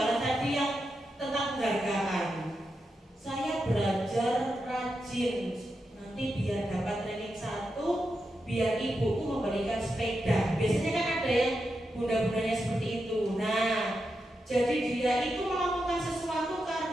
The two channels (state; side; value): normal; both; correlation 0.87